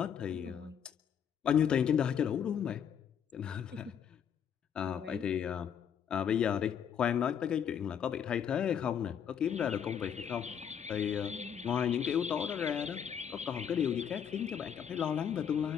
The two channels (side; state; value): right; quieter; 8.2 dB